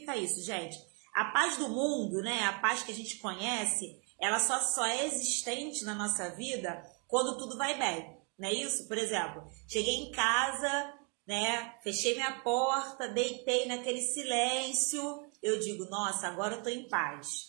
isso, gente? A paz do mundo, né? A paz que a gente conhece, ela só é existente na nossa vida quando tudo vai bem, não é isso? Por exemplo, cheguei em casa, né? Fechei minha porta, deitei naquele silêncio, eu digo, nossa, agora eu tô em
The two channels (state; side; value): quieter; left; 35.9 dB